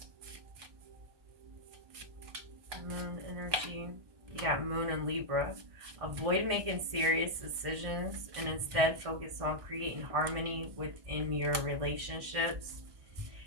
Moon energy. You got Moon and Libra. Avoid making serious decisions and instead focus on creating harmony within your relationships.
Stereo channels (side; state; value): left; late; 1.2 ms